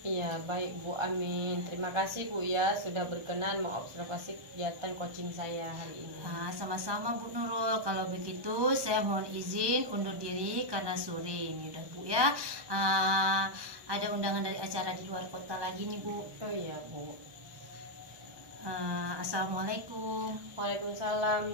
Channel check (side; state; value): left; late; 1.1 ms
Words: Iya baik Bu, amin. Terima kasih Bu ya sudah berkenan mengobservasi kegiatan coaching saya hari ini. Sama-sama Bu Nurul. Kalau begitu saya mohon izin undur diri karena sore ini udah Bu ya. Ada undangan dari acara di luar kota lagi nih Bu. Oh iya Bu. Assalamualaikum.